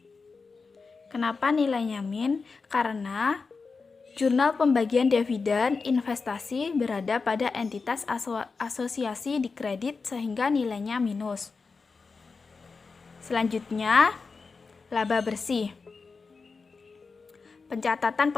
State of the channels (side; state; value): right; quieter; 4.6 dB